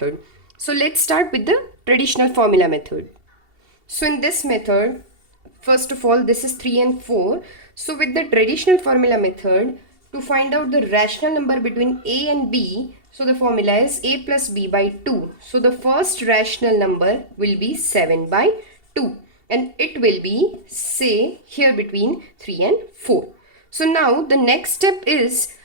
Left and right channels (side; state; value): left; late; 2.7 ms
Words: So let's start with the traditional formula method. So in this method, first of all this is 3 and 4. So with the traditional formula method, to find out the rational number between A and B, so the formula is A plus B by 2. So the first rational number will be 7 by 2 and it will be, say, here between 3 and 4. So now the next step is